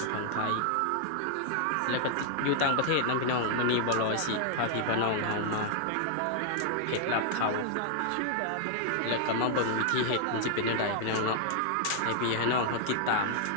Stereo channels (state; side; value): different; both; correlation 0.00